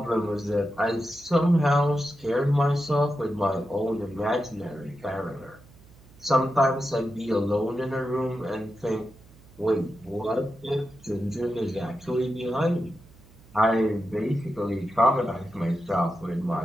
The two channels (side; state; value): right; noise; hum, 24 dB below the sound